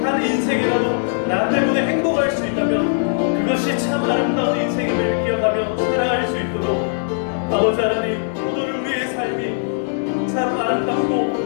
한 인생이라도 나 때문에 행복할 수 있다면 그것이 참 아름다운 인생임을 기억하며 살아갈 수 있도록 아버지 하나님, 오늘 우리의 삶이 참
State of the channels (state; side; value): silent; right; digital silence